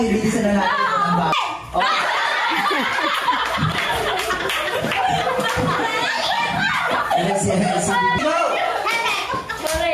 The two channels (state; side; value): identical; both; correlation 1.00